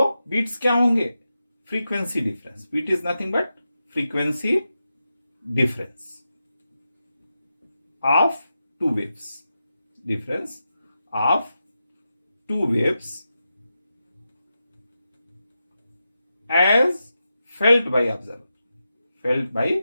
बीट्स क्या होंगे? Frequency difference. Beat is nothing but frequency difference of two waves. Difference of two waves as felt by observer. Felt by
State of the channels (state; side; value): inverted; both; correlation -0.90